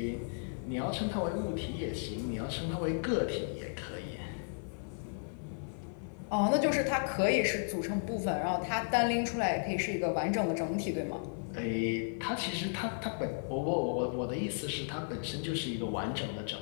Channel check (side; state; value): right; silent; 55 dB below the other